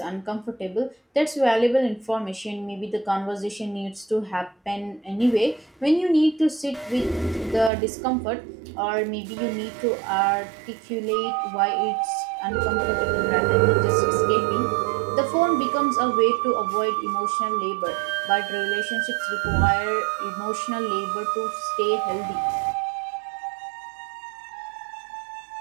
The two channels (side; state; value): left; drops out; at 7.7 s